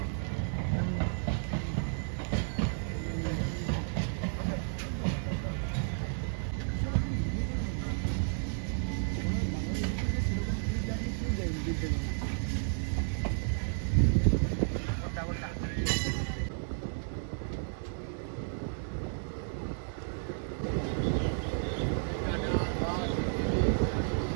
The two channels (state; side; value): silent; left; digital silence